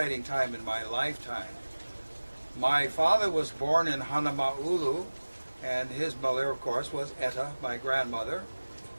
time in my lifetime. My father was born in Hanama'ulu, and his mother, of course, was Etta, my grandmother.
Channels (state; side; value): inverted; both; correlation -1.00